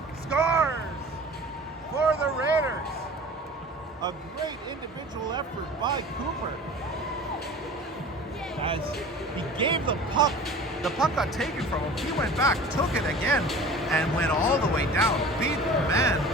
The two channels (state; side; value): normal; both; correlation 0.41